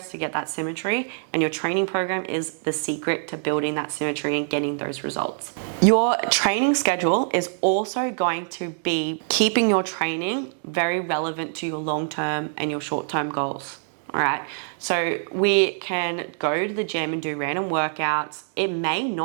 to get that symmetry, and your training program is the secret to building that symmetry and getting those results. Your training schedule is also going to be keeping your training very relevant to your long-term and your short-term goals. All right, so we can go to the gym and do random workouts. It may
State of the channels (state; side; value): silent; left; digital silence